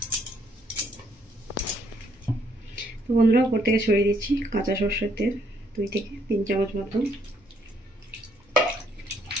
তো বন্ধুরা, উপর থেকে ছড়িয়ে দিচ্ছি কাঁচা সরষের তেল 2 থেকে 3 চামচ মতো।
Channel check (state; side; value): normal; both; correlation 0.69